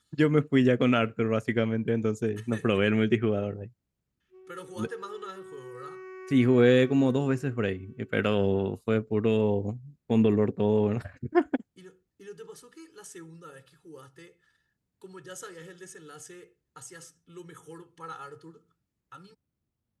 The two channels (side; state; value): both; identical; correlation 1.00